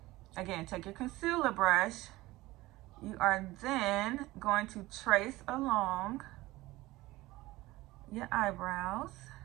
again, take your concealer brush. You are then going to trace along your eyebrows.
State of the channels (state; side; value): quieter; left; 18.9 dB